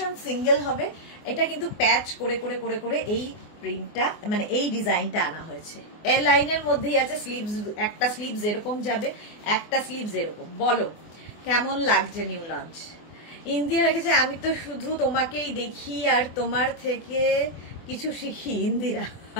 সিঙ্গেল হবে, এটা কিন্তু প্যাচ করে করে করে করে এই প্রিন্টটা মানে এই ডিজাইনটা আনা হয়েছে। এ লাইনের মধ্যেই আছে স্লিভস, একটা স্লিভস এরকম যাবে, একটা স্লিভস এরকম। বলো কেমন লাগছে নিউ লঞ্চ? ইন্দিরা রেখেছে আমি তো শুধু তোমাকেই দেখি আর তোমার থেকে কিছু শিখি। Indira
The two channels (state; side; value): late; right; 24 ms